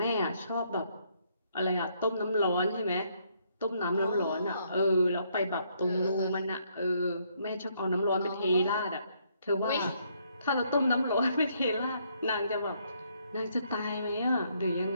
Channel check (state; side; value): inverted; both; correlation -0.71